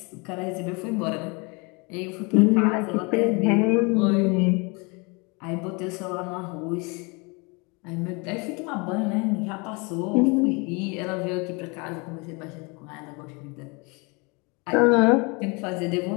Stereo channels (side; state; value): right; quieter; 29.5 dB